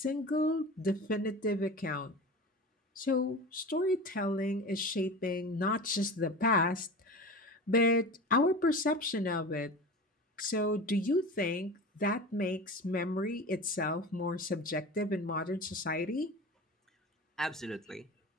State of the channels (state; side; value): normal; both; correlation 0.32